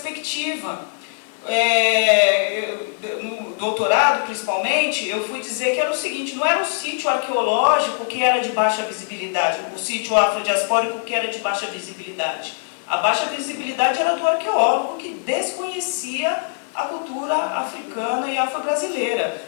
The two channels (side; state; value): right; silent; 64 dB below the other